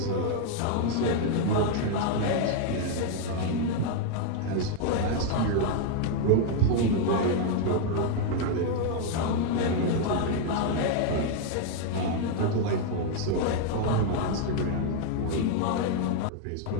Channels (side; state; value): both; different; correlation 0.00